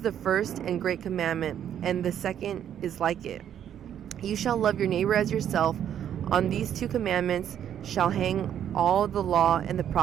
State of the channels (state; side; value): quieter; left; 9.8 dB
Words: the first and great commandment, and the second is like it. You shall love your neighbor as yourself. On these two commandments shall hang all the law and the